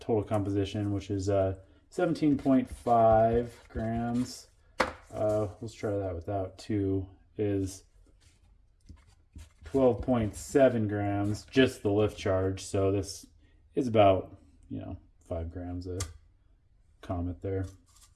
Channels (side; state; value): both; identical; correlation 1.00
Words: total composition, which is 17.5 grams. Let's try that without 2, is 12.7 grams, just the lift charge. So this is about, 5 grams of comet there.